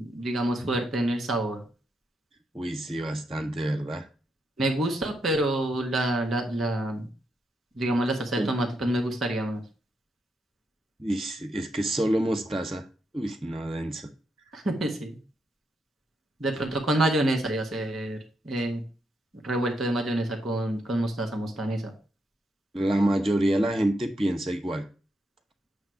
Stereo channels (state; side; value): normal; both; correlation 0.81